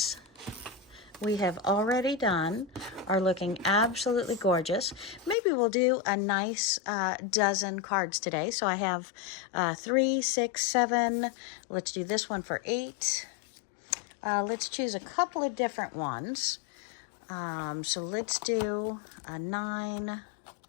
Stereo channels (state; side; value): drops out; right; at 5.4 s